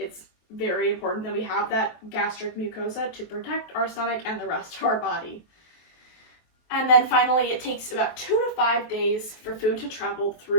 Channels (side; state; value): right; late; 23 ms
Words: very important that we have that gastric mucosa to protect our stomach and the rest of our body. And then finally, it takes about 2 to 5 days for food to travel